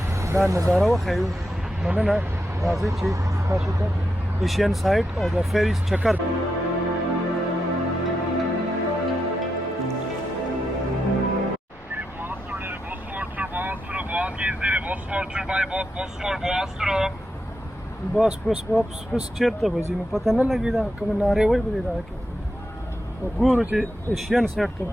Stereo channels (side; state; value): both; normal; correlation 0.85